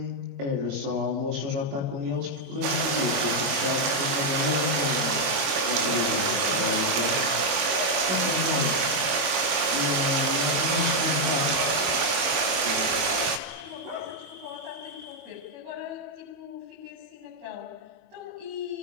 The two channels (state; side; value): late; left; 22 ms